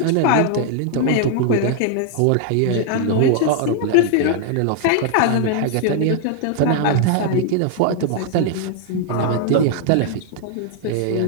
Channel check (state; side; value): different; both; correlation 0.00